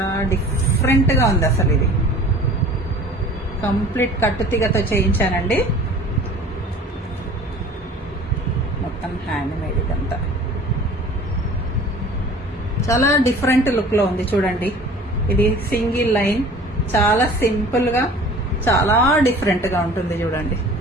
డిఫరెంట్ గా ఉంది అసలు. ఇది కంప్లీట్ కట్టుతీగతో చేయించానండి. మొత్తం హ్యాండ్ మేడ్. ఇదంతా చాలా డిఫరెంట్ లుక్ లో ఉంది. చూడండి, ఇది సింగిల్ లైన్, చాలా సింపుల్ గా చాలా డిఫరెంట్ గా ఉంటుంది. చూడండి,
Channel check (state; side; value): normal; both; correlation 0.45